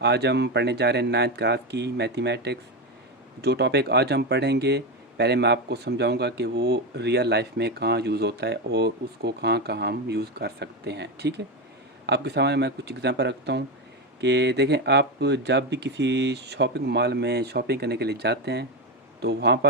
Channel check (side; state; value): both; normal; correlation 0.13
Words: आज हम पढ़ने जा रहे हैं 9th क्लास की मैथमेटिक्स। जो टॉपिक आज हम पढ़ेंगे, पहले मैं आपको समझाऊंगा कि वो रियल लाइफ में कहाँ यूज़ होता है और उसको कहाँ कहाँ हम यूज़ कर सकते हैं। ठीक है, आपके सामने मैं कुछ एग्जांपल रखता हूँ कि देखें, आप जब भी किसी शॉपिंग मॉल में शॉपिंग करने के लिए जाते हैं तो वहाँ